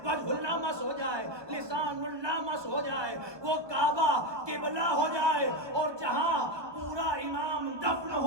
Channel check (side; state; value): left; late; 1.2 ms